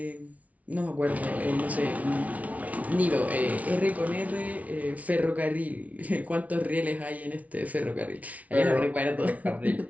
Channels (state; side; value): late; left; 0.069 ms